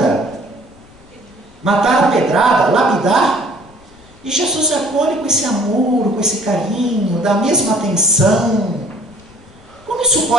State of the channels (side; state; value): left; noise; rumble, 27 dB below the sound